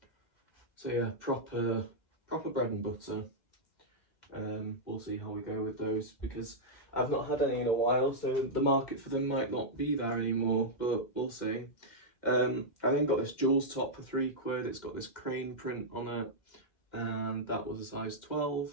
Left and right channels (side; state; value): right; late; 2.1 ms